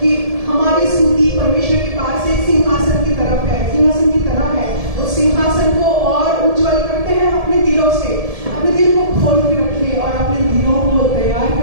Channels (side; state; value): left; late; 1.7 ms